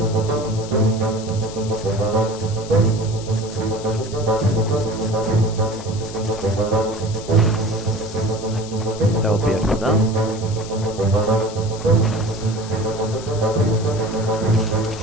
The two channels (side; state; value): left; noise; hiss, 15 dB below the sound